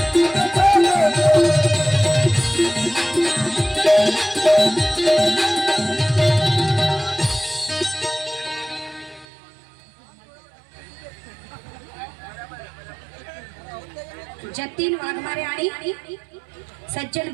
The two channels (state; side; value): drops out; left; at 9.2 s